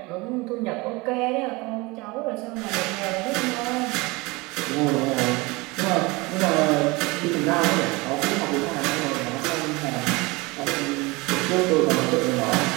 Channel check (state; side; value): quieter; left; 24.2 dB